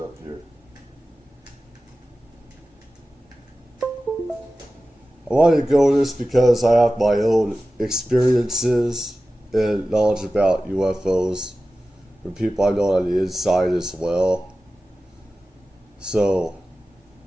here. I wanted to go over this because I have my own experiences and knowledge about UFOs from people I know on the inside as well. So,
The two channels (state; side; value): normal; both; correlation 0.95